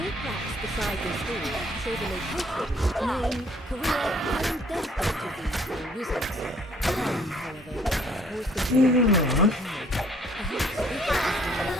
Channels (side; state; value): both; normal; correlation 0.60